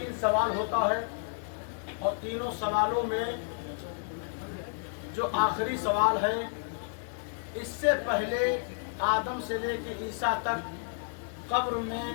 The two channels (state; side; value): silent; right; digital silence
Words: सवाल होता है और तीनों सवालों में जो आखिरी सवाल है, इससे पहले आदम से लेकर ईसा तक कब्र